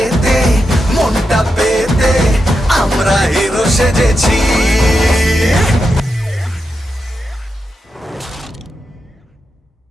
মনটা পেতে আমরা হিরো সেজেছি।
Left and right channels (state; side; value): normal; both; correlation 0.87